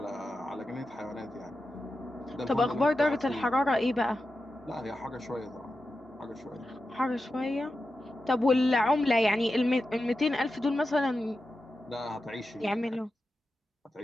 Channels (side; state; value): both; normal; correlation 0.91